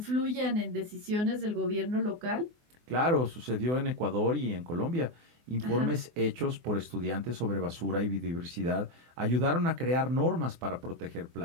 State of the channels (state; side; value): late; left; 24 ms